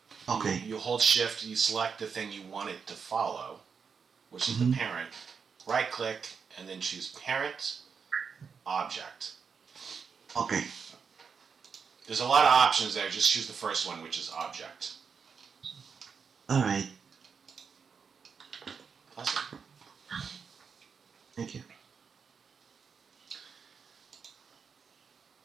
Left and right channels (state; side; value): quieter; left; 6.0 dB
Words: Okay. You hold shift, you select the thing you want it to follow, which is the Mm-hmm. parent. Right click and then choose parent, object. Okay. There's a lot of options there. Just choose the first one, which is object. All right. Awesome. Thank you.